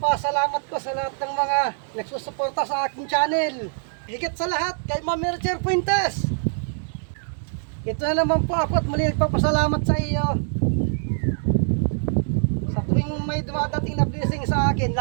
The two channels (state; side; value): silent; left; digital silence